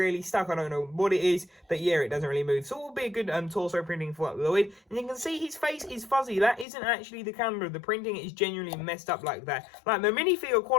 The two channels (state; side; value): drops out; right; at 6.7 s